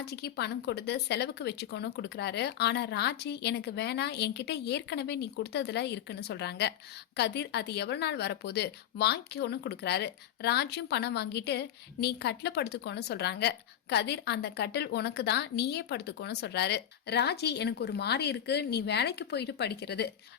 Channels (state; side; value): quieter; right; 10.4 dB